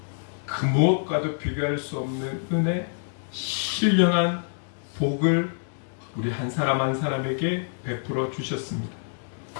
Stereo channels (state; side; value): silent; right; digital silence